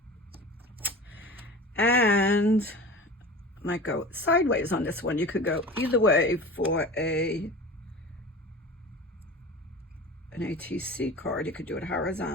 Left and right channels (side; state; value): both; normal; correlation 0.35